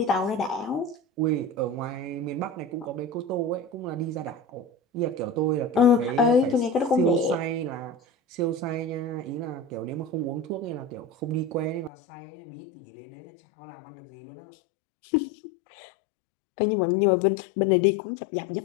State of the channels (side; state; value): right; drops out; at 11.9 s